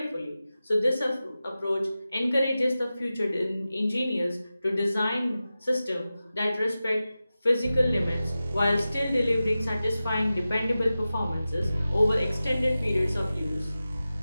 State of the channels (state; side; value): inverted; both; correlation -0.94